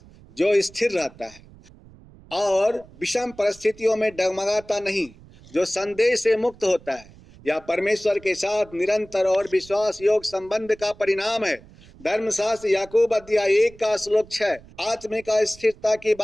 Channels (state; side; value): noise; right; rumble, 23 dB below the sound